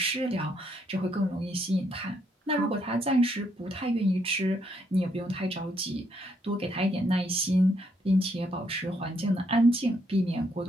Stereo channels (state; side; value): normal; both; correlation 0.74